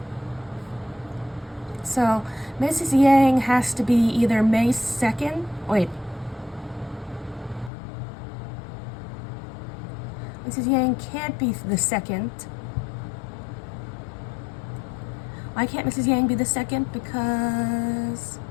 so Mrs. Yang has to be either May 2nd. Wait. Mrs. Yang can't be the 2nd. Why can't Mrs. Yang be the 2nd? Because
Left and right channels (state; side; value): drops out; right; at 7.7 s